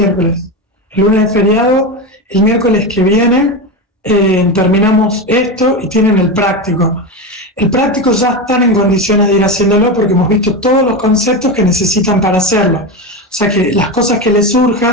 el lunes es feriado, el miércoles que viene terminamos esto y tienen el práctico. El práctico ya están en condiciones de ir haciéndolo porque hemos visto todos los conceptos que necesitan para hacerlo. O sea que las cosas que les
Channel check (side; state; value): both; normal; correlation 0.18